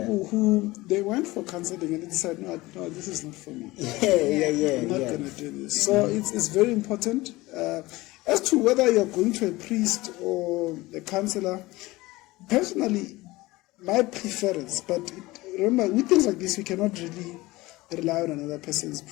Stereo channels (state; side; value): quieter; right; 20.0 dB